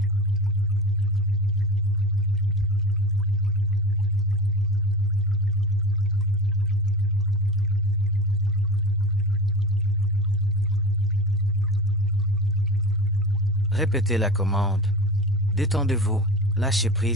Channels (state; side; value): normal; both; correlation 0.31